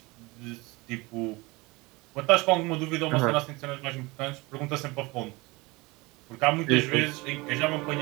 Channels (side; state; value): left; quieter; 23.8 dB